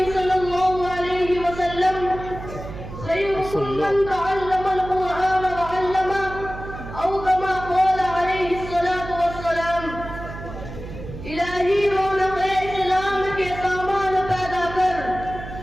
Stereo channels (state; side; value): noise; right; hum, 11 dB below the sound